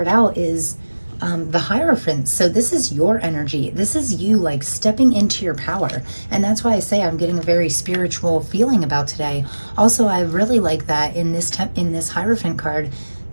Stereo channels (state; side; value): inverted; both; correlation -1.00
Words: out is the Hierophant. So this is your energy. This is you like stepping into your power. And that's why I say I'm getting a very spiritual feeling about today. Also, I really like that in this Hierophant card,